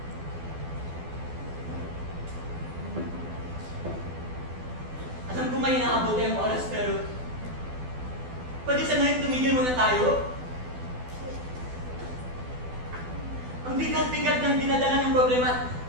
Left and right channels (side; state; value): left; late; 12 ms